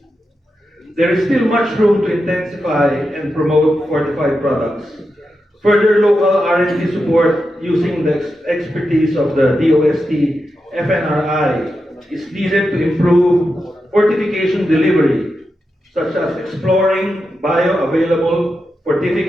There is still much room to intensify and promote fortified products. Further local R&D support using the expertise of the DOST FNRI is needed to improve fortification delivery, such as exploring bioavailable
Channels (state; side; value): normal; both; correlation 0.88